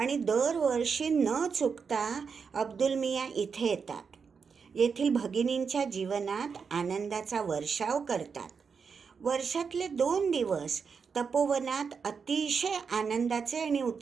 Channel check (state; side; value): quieter; left; 5.8 dB